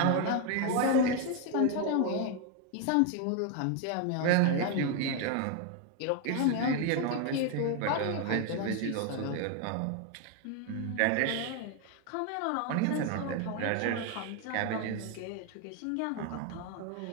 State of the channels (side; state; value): both; different; correlation 0.01